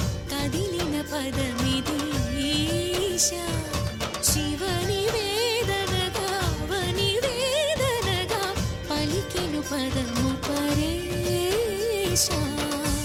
కదిలిన పదమిది ఈశా. శివని వేదనగా వని వేదనగా పలికెను పదము పరేశా.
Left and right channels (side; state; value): both; identical; correlation 1.00